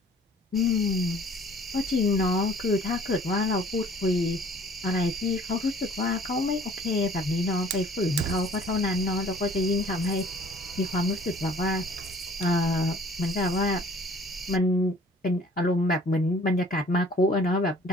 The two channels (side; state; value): both; normal; correlation 0.53